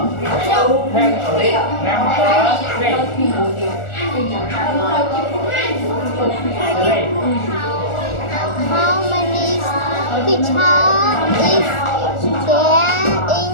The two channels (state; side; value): late; right; 1.4 ms